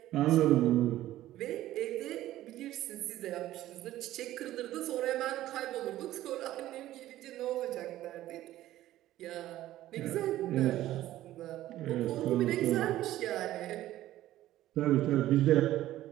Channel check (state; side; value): quieter; left; 14.4 dB